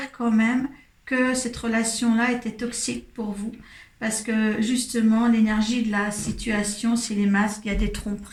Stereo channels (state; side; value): identical; both; correlation 1.00